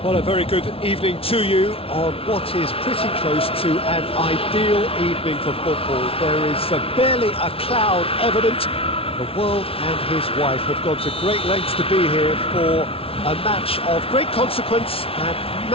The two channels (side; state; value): right; late; 0.27 ms